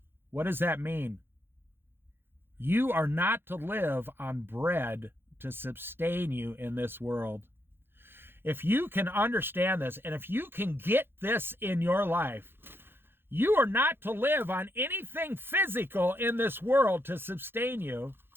What does that mean? You are not to live on bread to sustain you in this world. If you can understand this, and if you can get this in your life, you are not to live on anything physical in this world to sustain you.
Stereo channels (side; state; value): left; late; 0.10 ms